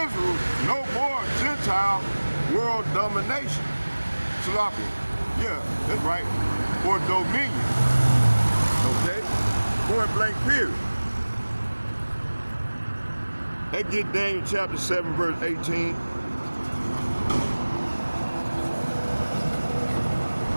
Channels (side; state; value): both; inverted; correlation -1.00